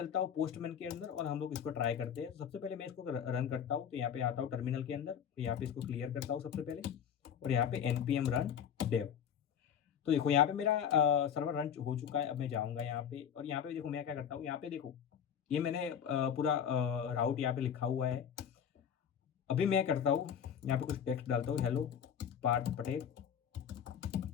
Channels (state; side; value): quieter; right; 8.4 dB